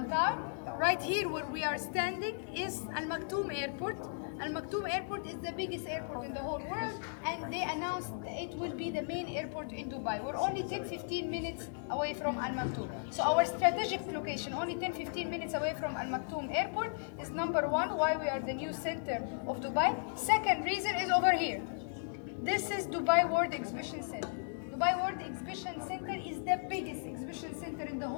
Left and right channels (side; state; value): right; silent; digital silence